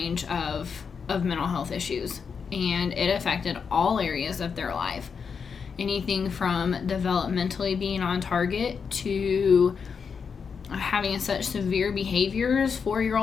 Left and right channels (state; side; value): quieter; right; 6.0 dB